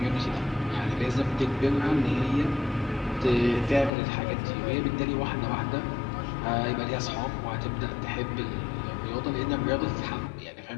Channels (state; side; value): drops out; right; at 3.9 s